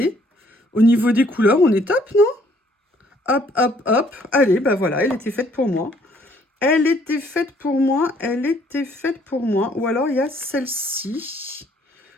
Au niveau des couleurs, on est top, non? Hop, hop, hop. Allez, ben voilà, elle était faite pour moi. Elle était faite pour moi. Elle était faite pour moi. Ou alors, il y a celle-ci.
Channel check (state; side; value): normal; both; correlation 0.63